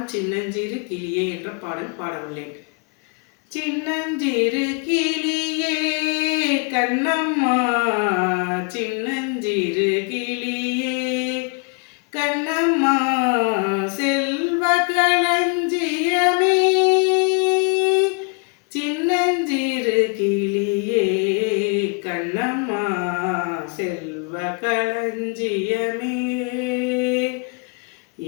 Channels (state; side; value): quieter; right; 35.4 dB